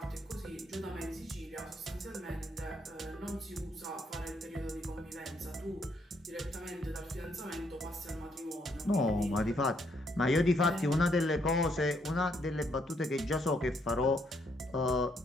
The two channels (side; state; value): both; normal; correlation 0.72